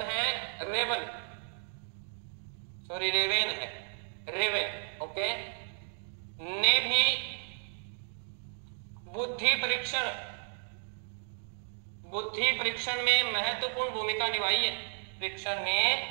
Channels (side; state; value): left; silent; 56 dB below the other